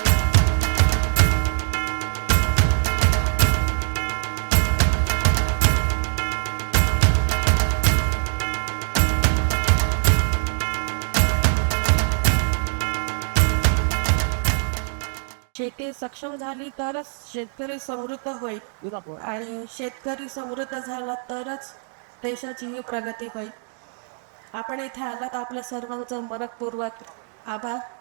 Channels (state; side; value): silent; left; 63 dB below the other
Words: शेती सक्षम झाली तरच शेतकरी समृद्ध होईल आणि शेतकरी समृद्ध झाला तरच देशाची प्रगती होईल. आपण इथे आलात आपल्या सर्वांचं मनपूर्वक आभार.